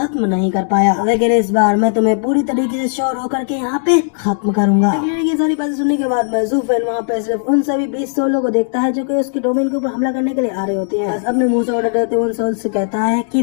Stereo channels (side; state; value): right; silent; 67 dB below the other